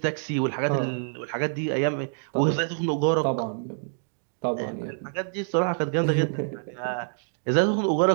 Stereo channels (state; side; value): silent; left; digital silence